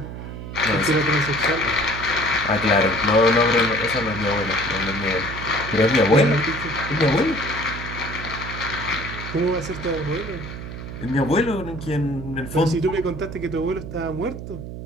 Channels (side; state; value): right; noise; hum, 9 dB below the sound